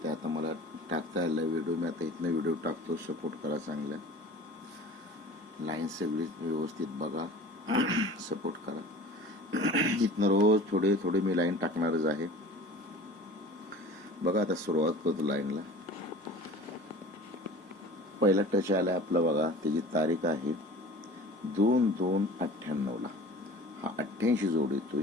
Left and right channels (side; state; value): both; normal; correlation 0.41